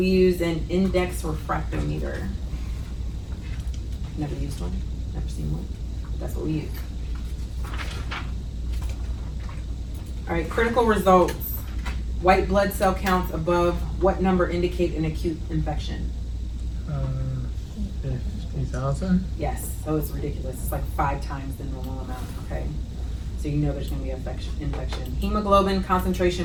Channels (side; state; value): both; identical; correlation 1.00